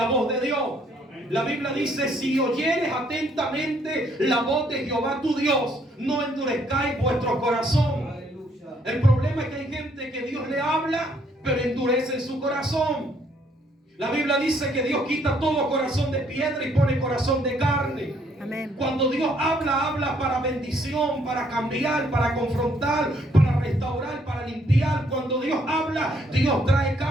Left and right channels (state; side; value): normal; both; correlation 0.67